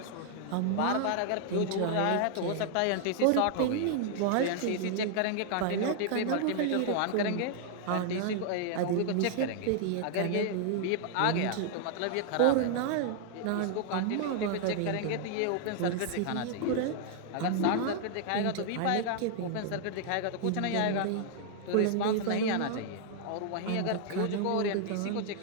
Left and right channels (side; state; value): both; different; correlation 0.00